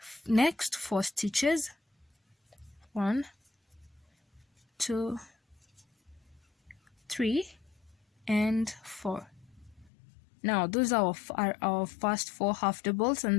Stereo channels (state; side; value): drops out; right; at 9.9 s